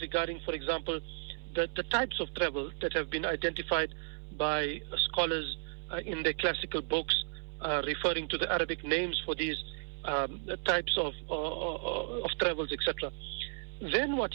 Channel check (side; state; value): left; silent; 55 dB below the other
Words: regarding, for example, the types of travel that have been identified by scholars in their classical books, referring to the Arabic names for these types of travels, etc. Then what